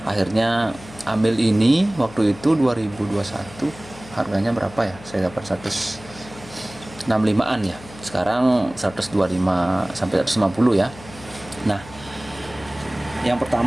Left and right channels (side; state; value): left; noise; hum, 18 dB below the sound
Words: Akhirnya ambil ini waktu itu 2021. Harganya berapa ya? Saya dapat 165-an ya. Sekarang 125 sampai 150 ya. Nah, yang